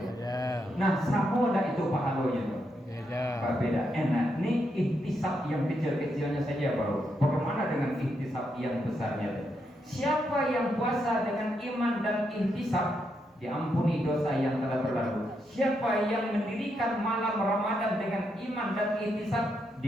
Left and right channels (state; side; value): normal; both; correlation 0.81